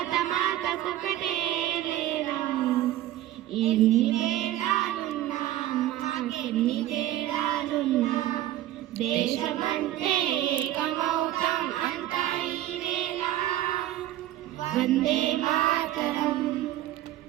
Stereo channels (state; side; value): quieter; left; 13.9 dB